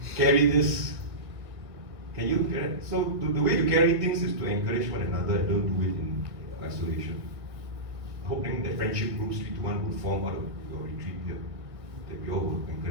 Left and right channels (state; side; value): late; left; 1.6 ms